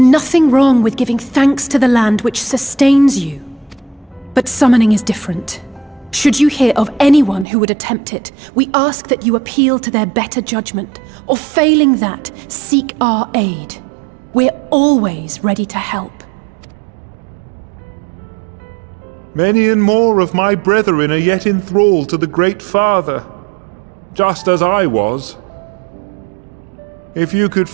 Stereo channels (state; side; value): drops out; left; at 7.5 s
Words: wrong with giving thanks to the land which sustains you. But summoning is different. Should you hear of anyone who would attempt it, we ask that you appeal to their better judgment, or failing that, seek our aid. We're always ready to help. Many and more of my brethren are yet enthralled to the Great Father, just as I was. If you could